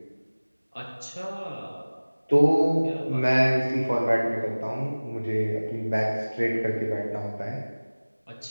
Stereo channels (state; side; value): inverted; both; correlation -1.00